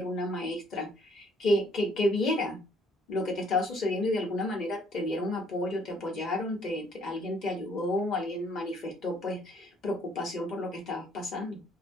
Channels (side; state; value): both; normal; correlation 0.63